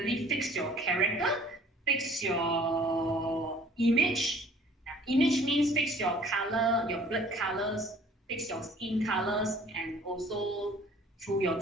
fix your character, fix your image. Image means fix your color, your blood colors, fix your skin colors, and also through your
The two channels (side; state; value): both; normal; correlation 0.53